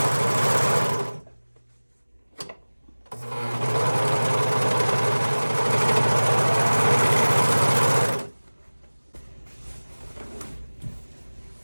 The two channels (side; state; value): both; inverted; correlation -1.00